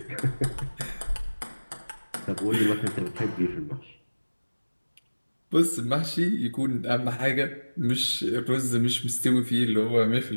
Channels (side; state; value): both; inverted; correlation -1.00